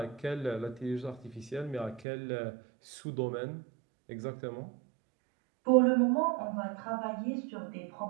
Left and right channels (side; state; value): left; drops out; at 2.1 s